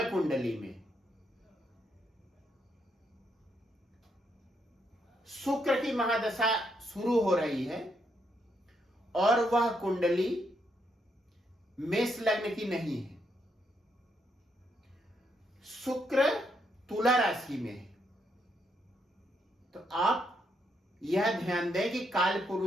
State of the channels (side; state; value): both; normal; correlation 0.77